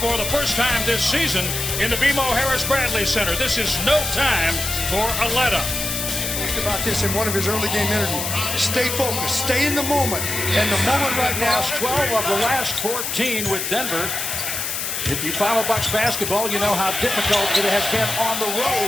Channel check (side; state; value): left; noise; hiss, 3 dB below the sound